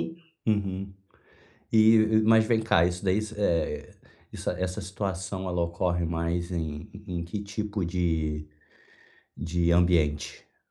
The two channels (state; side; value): identical; both; correlation 1.00